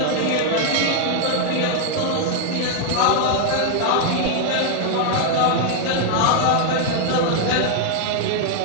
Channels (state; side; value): different; both; correlation 0.00